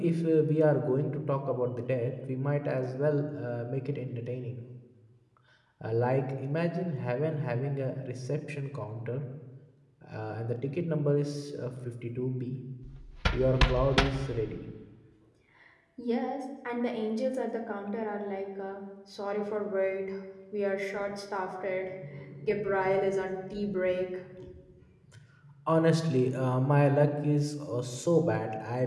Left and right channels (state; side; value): identical; both; correlation 1.00